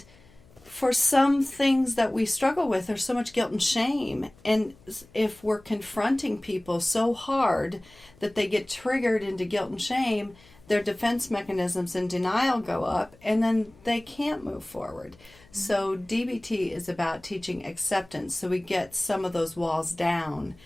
for some things that we struggle with, there's so much guilt and shame. And if we're confronting people so hard that they get triggered into guilt and shame, their defense mechanisms and denial go up, and then they can't move forward. So DBT is about teaching acceptance, so we get some of those walls down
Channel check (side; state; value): left; noise; hum, 27 dB below the sound